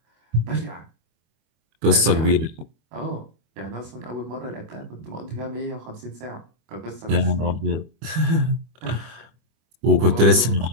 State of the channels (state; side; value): late; left; 25 ms